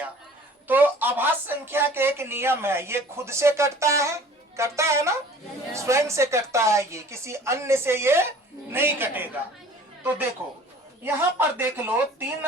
तो अभाज्य संख्या के एक नियम है, ये खुद से कटता है ना, स्वयं से कटता है, ये किसी अन्य से ये नहीं कटेगा। तो देखो यहाँ पर देख लो, 3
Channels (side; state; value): both; normal; correlation 0.48